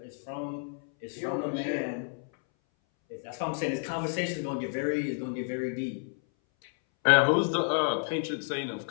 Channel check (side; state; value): right; silent; 58 dB below the other